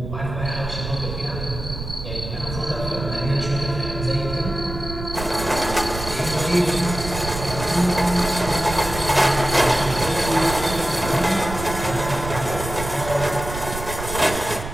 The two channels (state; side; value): noise; right; rumble, 8 dB below the sound